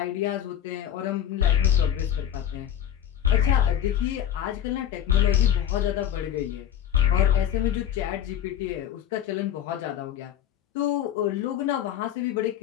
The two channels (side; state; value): right; quieter; 10.1 dB